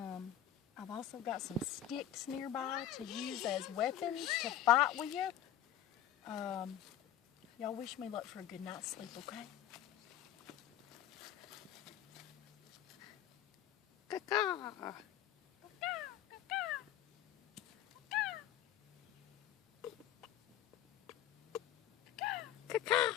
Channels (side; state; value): right; quieter; 11.0 dB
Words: I've also got some sticks nearby to use as weapons to fight with you. Y'all wish me luck for a good night's sleep, okay? Caca.